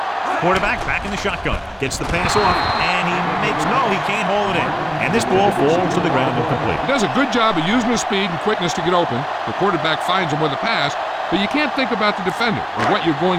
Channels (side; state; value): both; identical; correlation 1.00